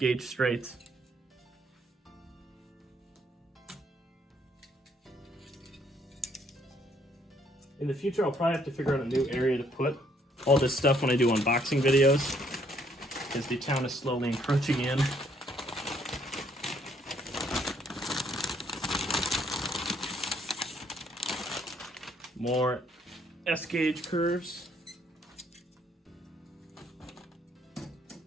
straights. In the future, I'll probably have to figure out a new area to put all this stuff when I do unboxing videos, because the town is slowly encroaching in. More S gauge curves.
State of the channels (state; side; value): normal; both; correlation 0.68